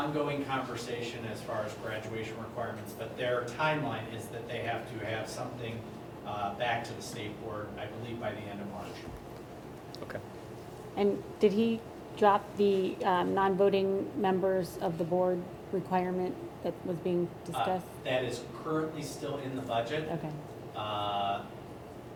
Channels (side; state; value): both; identical; correlation 1.00